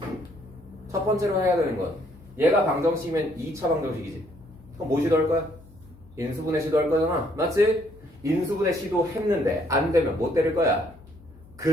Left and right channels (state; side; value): noise; left; hum, 23 dB below the sound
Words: 첫 번째로 해야 되는 건 얘가 방정식이면 2차 방정식이지. 그럼 뭐 시도할 거야? 인수분해 시도할 거잖아. 맞지? 인수분해 시도했는데 안 되면 뭐 때릴 거야?